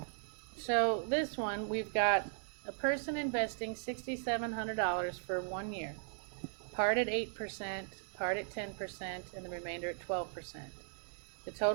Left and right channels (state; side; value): silent; left; 53 dB below the other